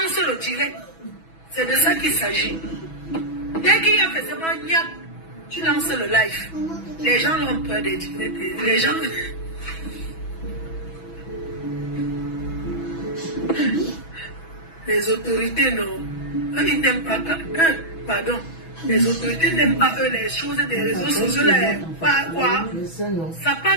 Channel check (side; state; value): right; late; 6.1 ms